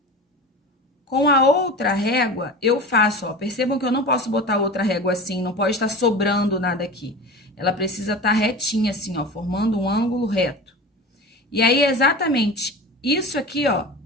Com a outra régua, eu faço, ó, percebam que eu não posso botar outra régua assim, não pode estar sobrando nada aqui. Ela precisa estar retinha assim, ó, formando um ângulo reto. E aí, exatamente isso aqui, ó,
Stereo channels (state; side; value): normal; both; correlation 0.32